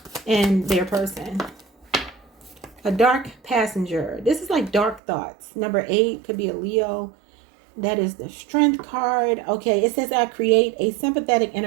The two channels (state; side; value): drops out; left; at 5.0 s